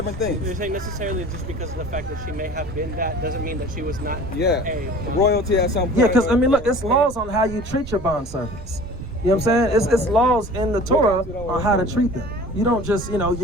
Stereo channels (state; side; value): noise; right; rumble, 13 dB below the sound